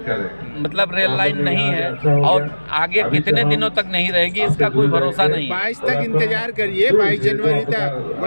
मतलब रेल लाइन नहीं है और आगे कितने दिनों तक नहीं रहेगी इसका कोई भरोसा नहीं। 22 तक इंतजार करिए, 22 जनवरी तक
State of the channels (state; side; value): inverted; both; correlation -1.00